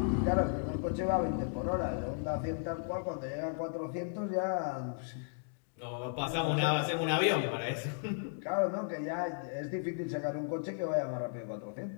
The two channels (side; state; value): right; silent; digital silence